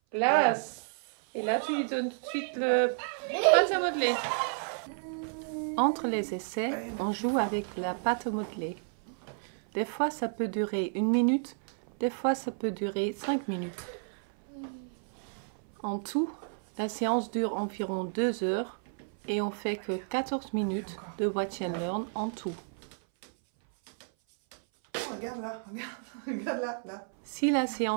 Glace. Et là, tu lui donnes tout de suite le pâte à modeler. Entre les essais, on joue avec la pâte à modeler. Des fois, ça peut durer 1 minute, des fois, ça peut durer 5 minutes. En tout, la séance dure environ 2 heures et on fait que 14 minutes de Watch and Learn en tout. Regarde là, regarde là, là. Si la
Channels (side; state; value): left; silent; 57 dB below the other